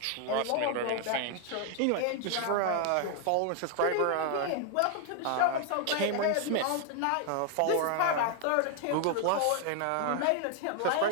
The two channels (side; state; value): both; different; correlation 0.00